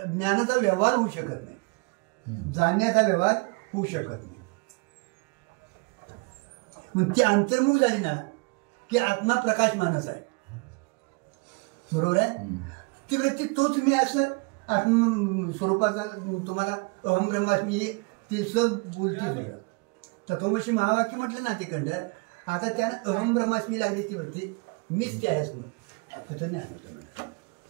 ज्ञानाचा व्यवहार होऊ शकत नाही, जाणण्याचा व्यवहार होऊ शकत नाही. मग ती अंतर्मुख झाली ना की आत्मा प्रकाश मानस आहे. बरोबर आहे. ती वृत्ती तोच मी असं आत्म स्वरूपाचा तुम्हाला अहम ब्रह्मास्मी ते सग बोलते. तत्वमशी महावाक्य म्हटलं ना तिकडं. आता त्यानं अहम ब्रह्मास्मी लागली ती वृत्ती, मीच त्या आहेस म्हणून तिथं ज्ञान होतं.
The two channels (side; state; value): left; quieter; 29.8 dB